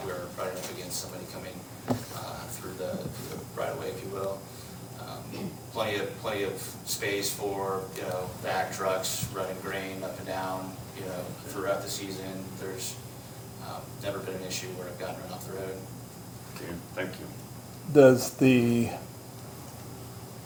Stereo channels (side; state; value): both; identical; correlation 1.00